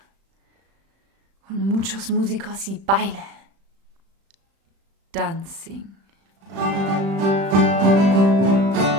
Con muchos músicos y baile. Dancing.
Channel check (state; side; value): late; left; 35 ms